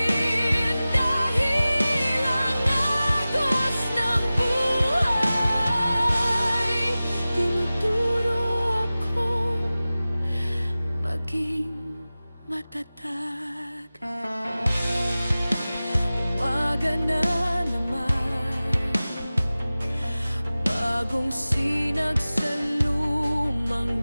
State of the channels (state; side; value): inverted; both; correlation -0.97